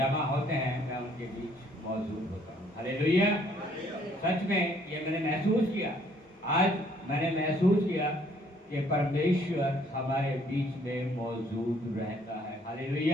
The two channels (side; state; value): both; normal; correlation 0.63